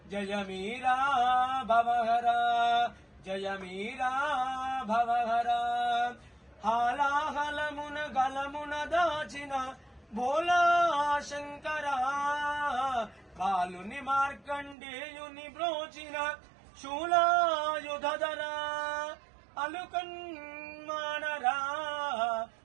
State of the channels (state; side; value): drops out; left; at 14.8 s